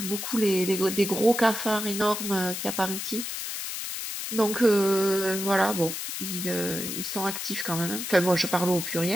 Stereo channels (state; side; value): noise; left; hiss, 5 dB below the sound